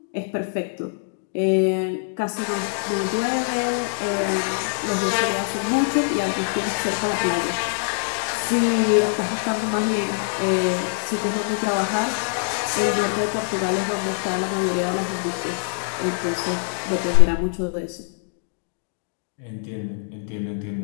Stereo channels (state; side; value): silent; right; digital silence